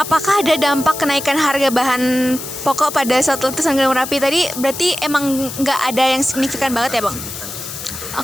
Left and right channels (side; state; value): left; noise; hiss, 9 dB below the sound